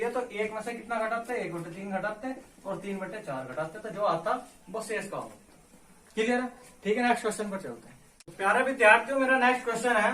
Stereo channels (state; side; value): identical; both; correlation 1.00